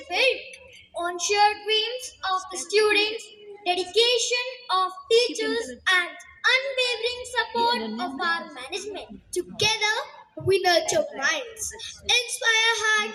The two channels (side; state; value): both; identical; correlation 1.00